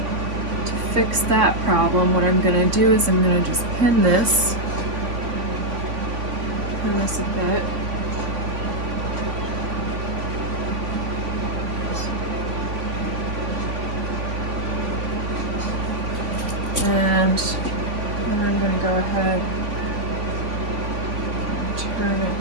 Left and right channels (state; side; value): late; left; 3.5 ms